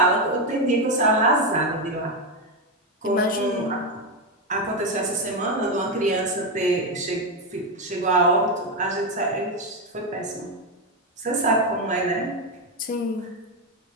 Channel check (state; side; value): normal; both; correlation 0.08